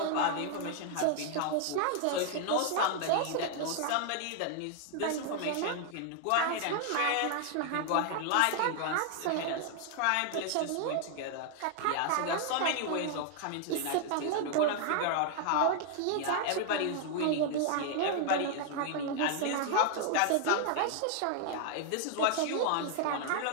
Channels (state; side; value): different; both; correlation 0.00